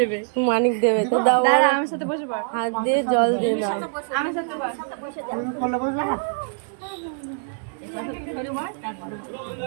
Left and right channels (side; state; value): left; silent; digital silence